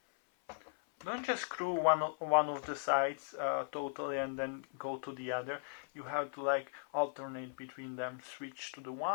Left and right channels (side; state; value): right; silent; 53 dB below the other